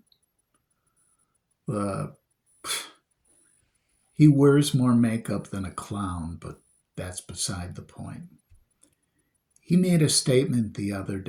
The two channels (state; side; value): identical; both; correlation 1.00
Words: the he wears more makeup than a clown, but that's beside the point. He made a statement the other